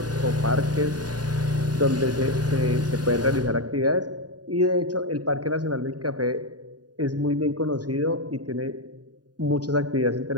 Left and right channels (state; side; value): late; left; 0.69 ms